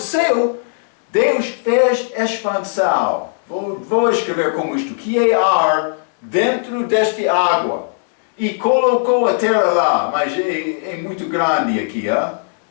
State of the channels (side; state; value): right; silent; digital silence